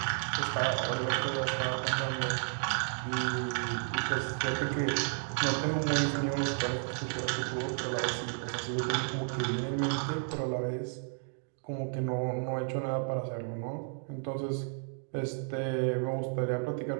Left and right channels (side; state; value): left; silent; 56 dB below the other